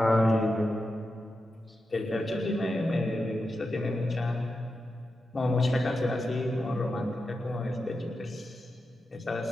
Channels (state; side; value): normal; both; correlation 0.89